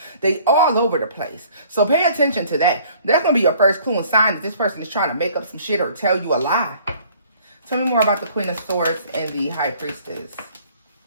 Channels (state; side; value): inverted; both; correlation -0.55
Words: they all over the place. So pay attention to that. That's going to be your first clue and sign that this person is trying to make up some shit or tell you a lie. Tell me more about the Queen of Swords and the High Priestess.